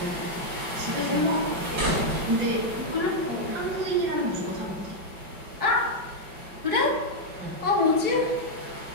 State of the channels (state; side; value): late; left; 5.2 ms